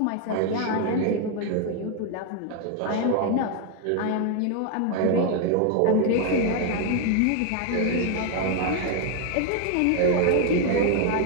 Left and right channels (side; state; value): both; different; correlation 0.01